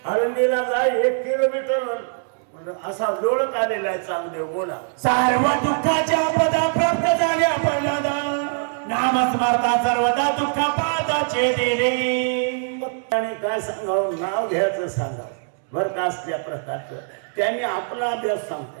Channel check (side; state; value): left; silent; digital silence